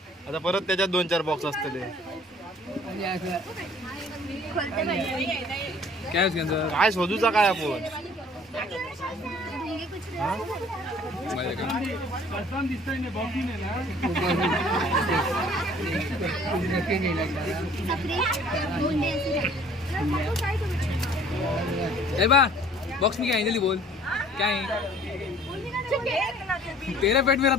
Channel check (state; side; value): normal; both; correlation 0.54